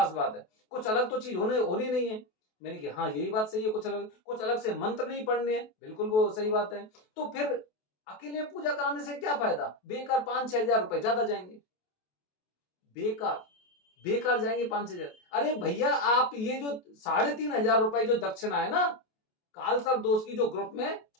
बात है, कुछ अलग तो चीज होनी नहीं है। मैंने कि हाँ यही बात सही है, कुछ अलग से मंत्र नहीं पढ़ने हैं, बिल्कुल वो सही बात है। तो फिर अकेले पूजा कराने से क्या फायदा, बेकार 5-6 हजार रुपए ज्यादा जाएंगे, बेकार बेकार जाएंगे 5-6 हजार। अरे भैया आप ये जो 3,500 रुपए जो दक्षिणा है ना, कालसर दोष की जो ग्रुप में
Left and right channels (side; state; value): right; late; 28 ms